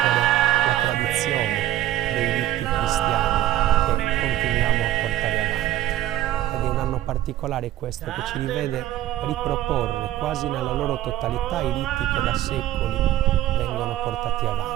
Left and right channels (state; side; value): quieter; left; 13.7 dB